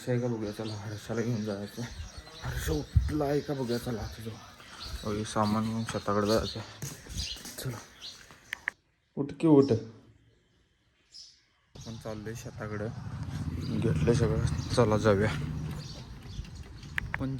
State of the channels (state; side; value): identical; both; correlation 1.00